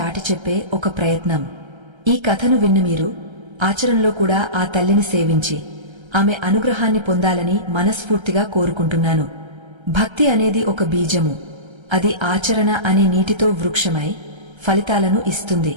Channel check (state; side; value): late; left; 1.3 ms